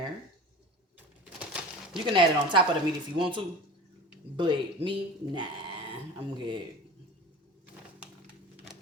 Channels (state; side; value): normal; both; correlation 0.36